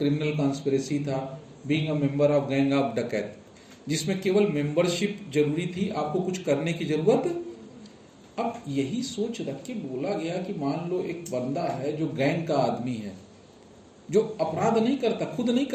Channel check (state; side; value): identical; both; correlation 1.00